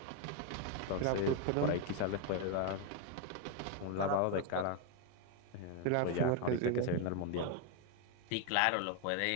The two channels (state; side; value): different; both; correlation 0.01